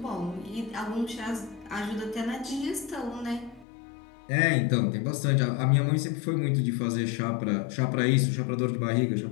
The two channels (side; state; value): right; drops out; at 3.7 s